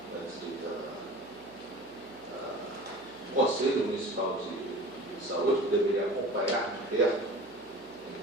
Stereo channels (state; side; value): noise; right; hum, 26 dB below the sound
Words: o Conselho Municipal de Saúde, que deveria acompanhar de perto,